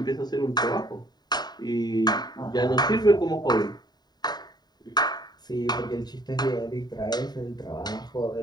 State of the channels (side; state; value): right; late; 0.20 ms